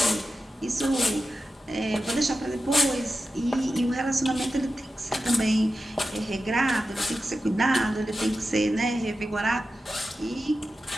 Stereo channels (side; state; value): both; normal; correlation 0.92